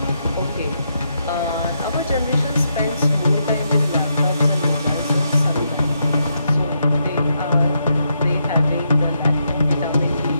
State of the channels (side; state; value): both; inverted; correlation -0.80